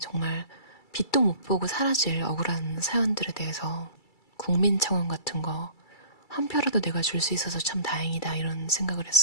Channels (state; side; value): late; right; 2.3 ms